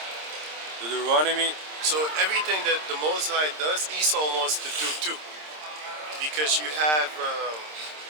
Deuteronomy. So everything that the Most High does, Esau wants to do too. Because you have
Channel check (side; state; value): left; late; 26 ms